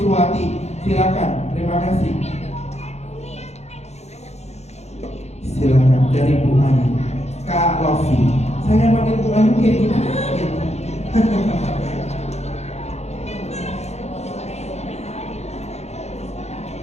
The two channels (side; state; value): right; late; 0.32 ms